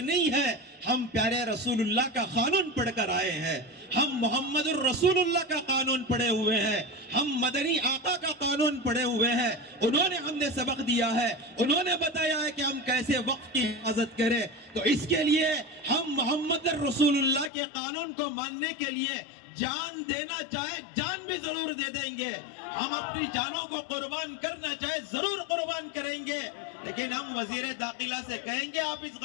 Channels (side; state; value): right; drops out; at 17.5 s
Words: ہے. ہم پیارے رسول اللہ کا قانون پڑھ کر آئے ہیں. ہم محمد الرسول اللہ کا قانون پڑھے ہوئے ہیں. ہم مدنی آقا کا قانون پڑھے ہوئے ہیں. انہوں نے ہم نے سبق دیا ہے. انہوں نے بتایا ہے کہ ہم کیسے وقت کی حفاظت کریں. تو اس کے لیے ہم محمد الرسول اللہ کے قانون کو ماننے کے لیے جان دینا چاہے جان بھی ضرور دے دیں گے. ہم اپنی جانوں کو قربان کرنا چاہے ضرور قربان کریں گے. لیکن ہم وزیر داخلہ سے کہیں گے آپ اس